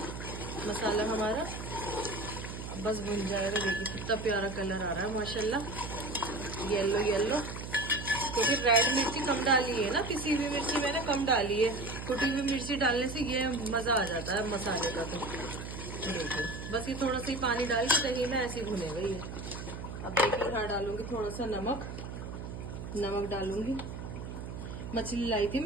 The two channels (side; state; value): right; noise; hum, 8 dB below the sound